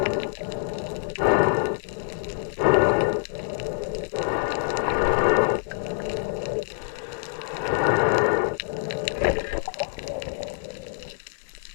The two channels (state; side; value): silent; right; 56 dB below the other